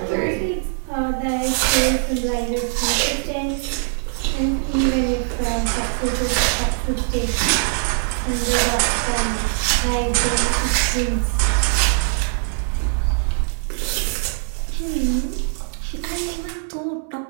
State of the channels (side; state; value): left; silent; 65 dB below the other